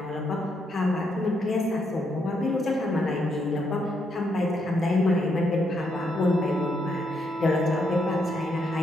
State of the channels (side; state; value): both; normal; correlation 0.77